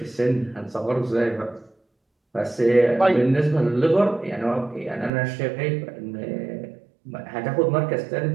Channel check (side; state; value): left; drops out; at 5.1 s